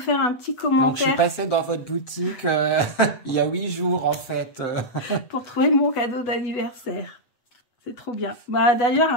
un petit commentaire. Donc, je suis passée dans votre boutique il y a 8 jours, en fait. Pour trouver mon cadeau d'anniversaire. C'est trop bien. D'ailleurs,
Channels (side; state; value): right; late; 8.1 ms